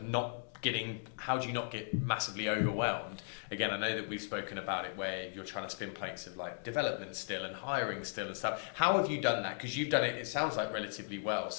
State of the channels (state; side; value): silent; right; digital silence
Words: not getting, how do you not get massively overwhelmed? Again, I know that we've spoken about it where you're trying to spin plates of like development still and hiring still and stuff. How have you done that? Because you've done it, it sounds like relatively well.